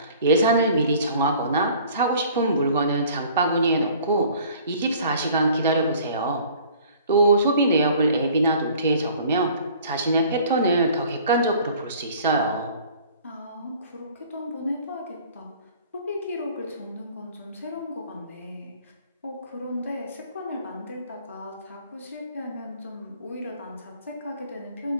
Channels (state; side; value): inverted; both; correlation -0.51